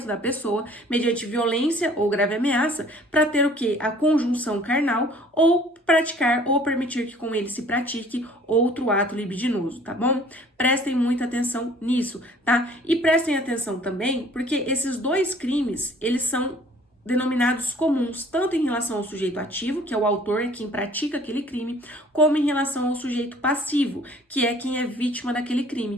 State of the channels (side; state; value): both; normal; correlation 0.53